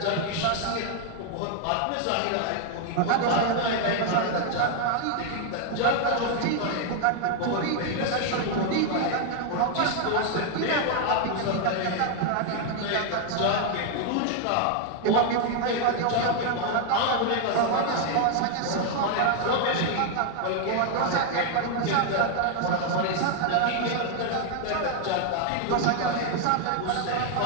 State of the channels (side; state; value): both; different; correlation 0.00